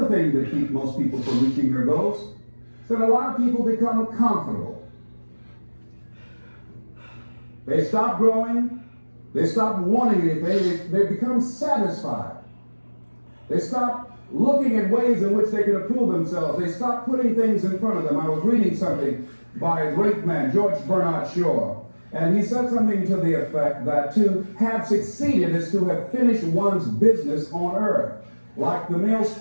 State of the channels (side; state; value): both; inverted; correlation -1.00